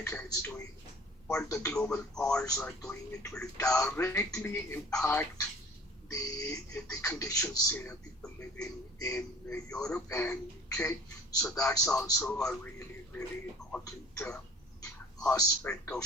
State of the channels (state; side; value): normal; both; correlation 0.48